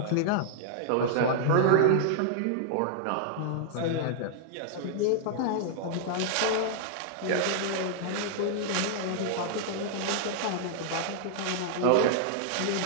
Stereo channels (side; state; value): both; different; correlation -0.01